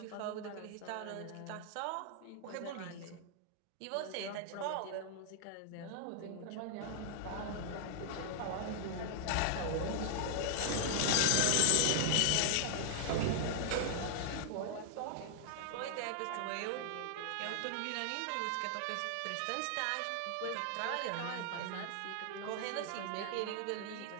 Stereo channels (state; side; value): different; both; correlation 0.00